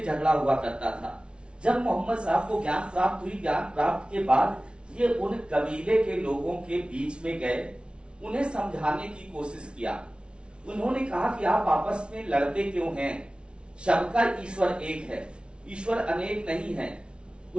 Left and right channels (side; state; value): left; late; 0.057 ms